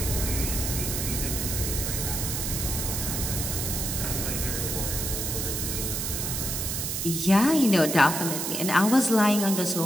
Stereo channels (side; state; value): right; noise; hiss, 2 dB below the sound